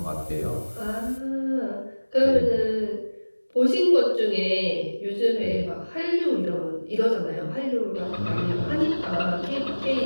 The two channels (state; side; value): inverted; both; correlation -1.00